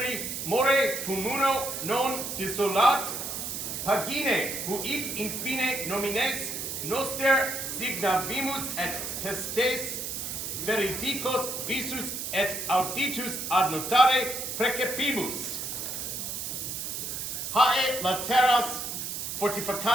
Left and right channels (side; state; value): right; noise; hiss, 5 dB below the sound